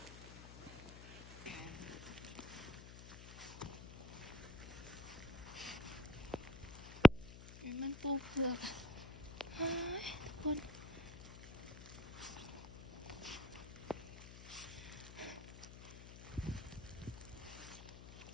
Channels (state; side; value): noise; left; hum, 13 dB below the sound